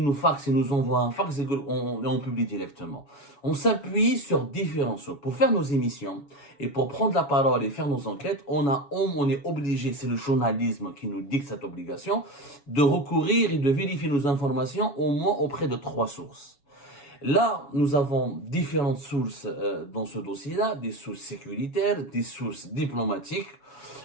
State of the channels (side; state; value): right; late; 7.1 ms